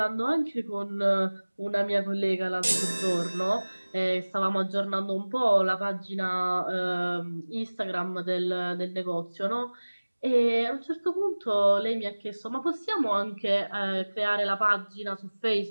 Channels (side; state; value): both; inverted; correlation -1.00